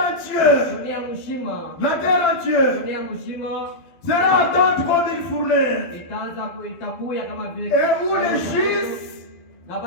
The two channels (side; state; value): right; late; 12 ms